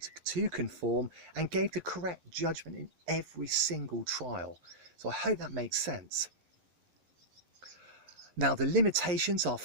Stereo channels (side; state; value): left; late; 11 ms